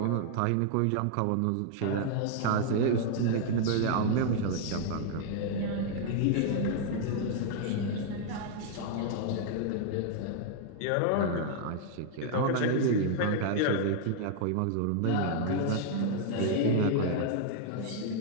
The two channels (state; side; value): different; both; correlation 0.00